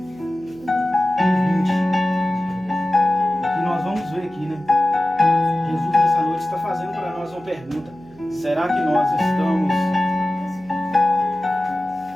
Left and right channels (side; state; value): right; noise; hum, 23 dB below the sound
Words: pergunta: será que nós estamos...